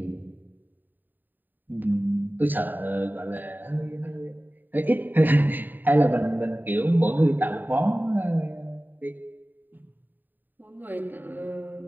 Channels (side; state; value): left; late; 0.090 ms